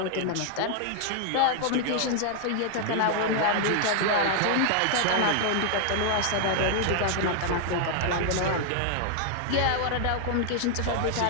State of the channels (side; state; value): both; different; correlation 0.00